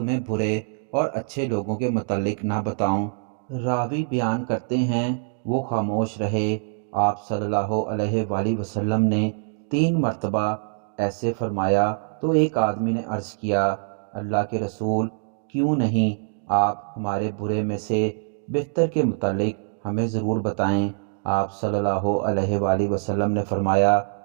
برے اور اچھے لوگوں کے متعلق نہ بتاؤں؟ راوی بیان کرتے ہیں وہ خاموش رہے۔ آپ صلی اللہ علیہ وآلہ وسلم نے 3 مرتبہ ایسے فرمایا تو ایک آدمی نے عرض کیا، اللہ کے رسول، کیوں نہیں آپ ہمارے برے میں سے بہتر کے متعلق ہمیں ضرور بتائیں۔ آپ صلی اللہ علیہ وآلہ وسلم نے فرمایا،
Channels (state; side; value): silent; left; digital silence